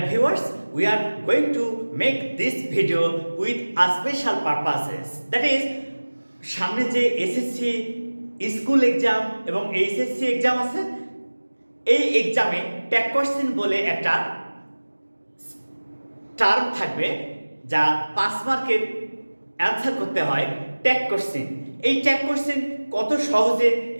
viewers, we are going to make this video with a special purposes. That is, সামনে যে SSC school exam এবং HSC exam আছে, এই এক্সামে tag question বলে একটা term থাকবে যা 5 মার্কের অ্যান্সার করতে হয় ট্যাগ কোশ্চেন। এই ট্যাগ কোশ্চেন কত সহজে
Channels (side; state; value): both; inverted; correlation -1.00